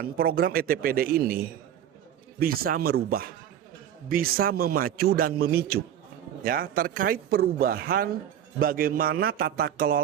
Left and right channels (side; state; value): left; quieter; 10.3 dB